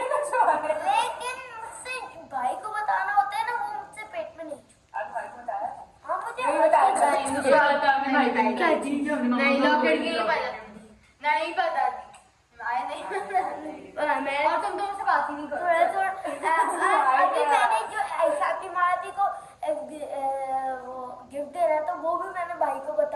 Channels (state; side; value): identical; both; correlation 1.00